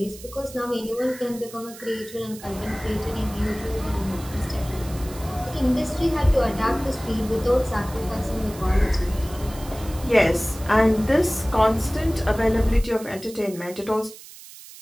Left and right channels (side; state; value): right; noise; hiss, 17 dB below the sound